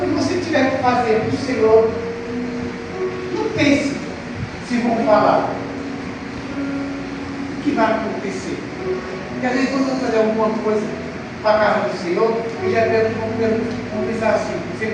você tiver que fazer para o Senhor, não pense se vão falar. O que vai acontecer? Porque às vezes quando você fazer alguma coisa para a casa do Senhor, eu já vou pensar assim, você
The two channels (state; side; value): identical; both; correlation 1.00